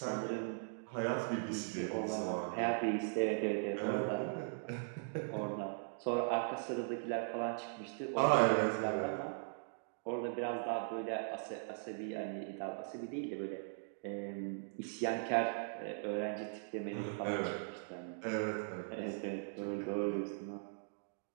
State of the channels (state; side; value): silent; left; digital silence